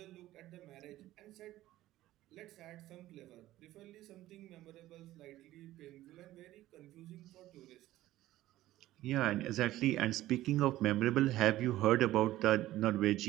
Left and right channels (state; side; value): quieter; left; 15.3 dB